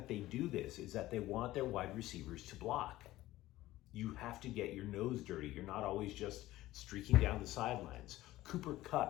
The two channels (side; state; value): right; quieter; 16.3 dB